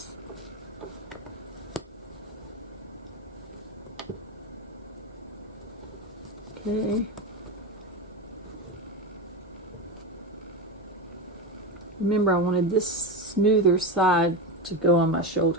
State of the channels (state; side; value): normal; both; correlation 0.17